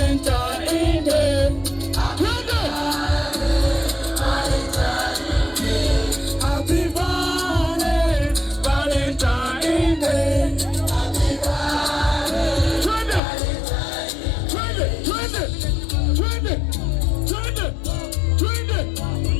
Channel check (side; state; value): right; drops out; at 13.2 s